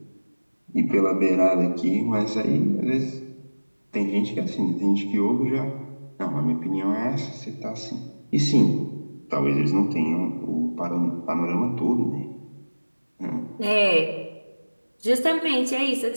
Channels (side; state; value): both; inverted; correlation -1.00